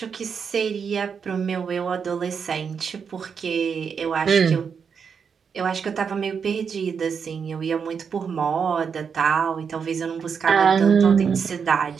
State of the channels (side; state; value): left; quieter; 6.4 dB